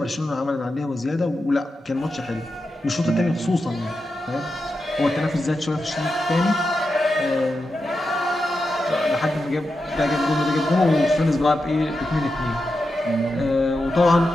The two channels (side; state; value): both; normal; correlation 0.89